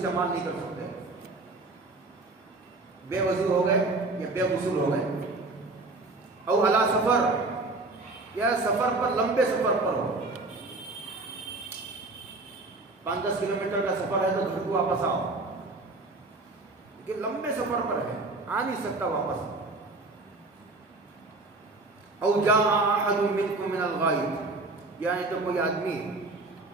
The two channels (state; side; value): quieter; left; 3.2 dB